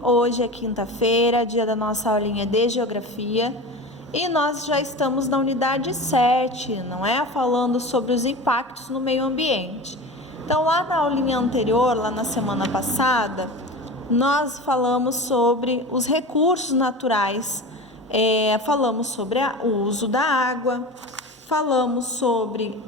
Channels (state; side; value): normal; both; correlation 0.31